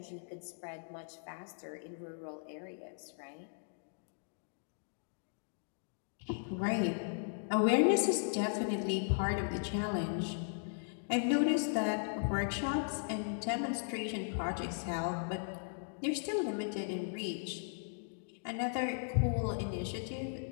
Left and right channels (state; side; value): silent; right; digital silence